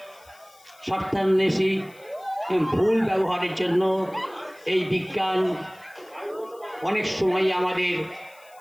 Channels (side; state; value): left; noise; hiss, 27 dB below the sound